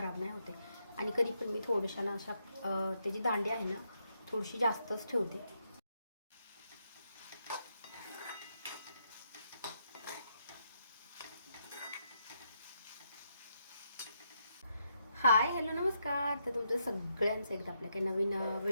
नाही होते. आणि कधी पण मी थोड्याशा ना अशा त्याची दांडी आहे ना थोडीशी जास्तच ठेवते. हाय, हॅलो, नमस्कार. तर तुमचं सगळ्यांचं एकदा आपल्या काही नवीन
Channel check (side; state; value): both; inverted; correlation -0.78